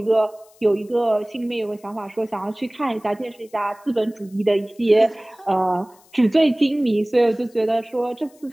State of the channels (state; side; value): noise; left; hiss, 29 dB below the sound